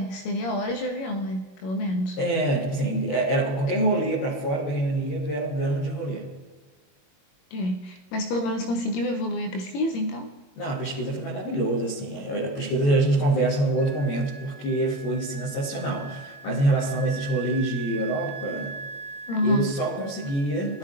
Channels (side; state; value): right; late; 22 ms